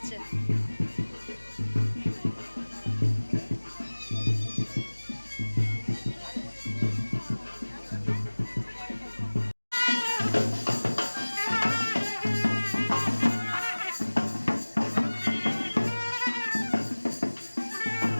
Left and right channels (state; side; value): inverted; both; correlation -1.00